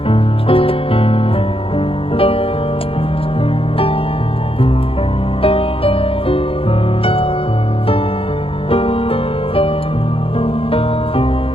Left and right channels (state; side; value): late; right; 0.27 ms